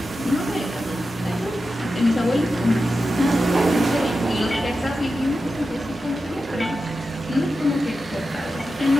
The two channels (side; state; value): both; normal; correlation 0.91